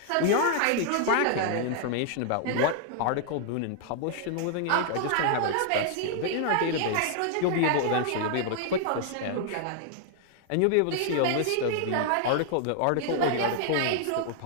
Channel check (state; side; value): different; both; correlation -0.01